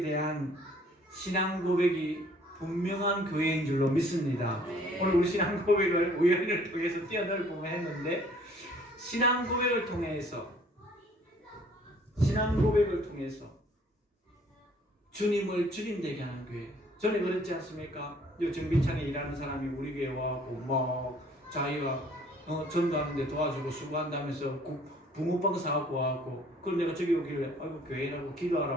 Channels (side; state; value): both; normal; correlation 0.57